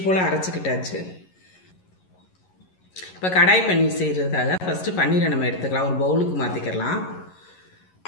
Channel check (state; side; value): late; right; 11 ms